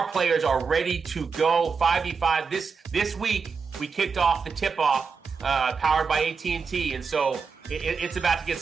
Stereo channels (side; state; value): left; quieter; 5.4 dB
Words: players are ready to go 5v5. This week, we kicked off the tip-off powered by AT&T, and so it's about to get